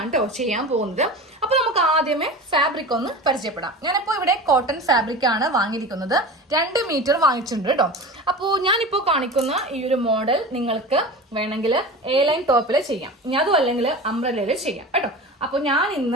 കേട്ടോ ചെയ്യാൻ പോകുന്നത്. അപ്പൊ നമുക്ക് ആദ്യമേ ഫാബ്രിക് ഒന്ന് പരിചയപ്പെടാം. ഞാനിപ്പോ ഇവിടെ കോട്ടൺ ഫാബ്രിക് ആണ് വാങ്ങിയിരിക്കുന്നത്. 2 മീറ്റർ വാങ്ങിച്ചിട്ടുണ്ട് കേട്ടോ. അപ്പോൾ ഞാനിപ്പോ കാണിക്കുന്ന ഈ ഒരു മോഡൽ നിങ്ങൾക്ക് വേണമെങ്കിൽ എ ലൈൻ ടോപ്പിൽ ചെയ്യാം, അതും അല്ലെങ്കിൽ അംബ്രല്ലയിൽ ചെയ്യാം കേട്ടോ. അപ്പൊ ഞാൻ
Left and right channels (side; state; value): both; normal; correlation 0.32